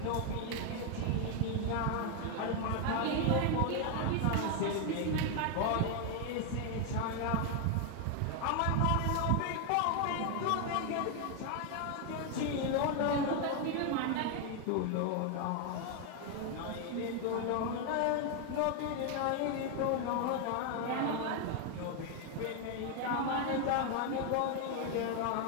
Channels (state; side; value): different; both; correlation 0.01